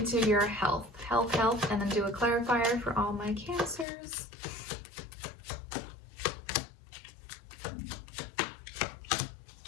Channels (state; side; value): drops out; right; at 3.9 s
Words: your health, and then do a clarifier for all my Cancers.